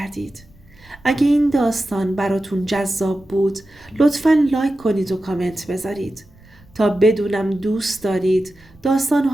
اگه این داستان براتون جذاب بود لطفاً لایک کنید و کامنت بذارید تا بدونم دوست دارید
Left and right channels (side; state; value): right; noise; rumble, 27 dB below the sound